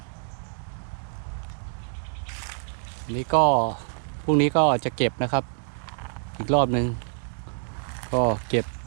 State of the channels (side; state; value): left; silent; digital silence